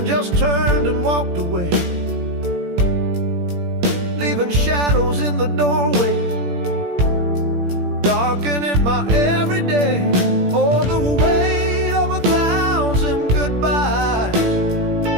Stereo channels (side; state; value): left; late; 17 ms